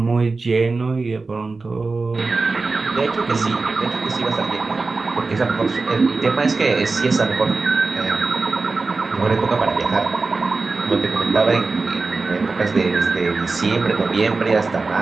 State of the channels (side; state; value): left; quieter; 3.9 dB